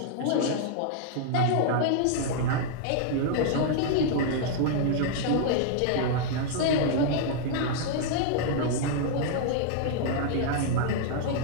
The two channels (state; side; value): different; both; correlation -0.01